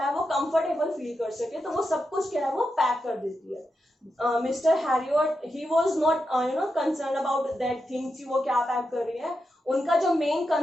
वो कंफर्टेबल फील कर सके, तो वो सब कुछ क्या है वो पैक कर देती है। Mister Herriot he was not you know concern about that things कि वो क्या पैक कर रही है। उनका जो मेन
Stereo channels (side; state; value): both; normal; correlation 0.87